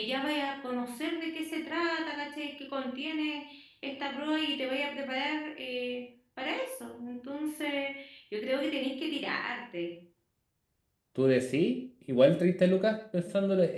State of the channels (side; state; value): both; identical; correlation 1.00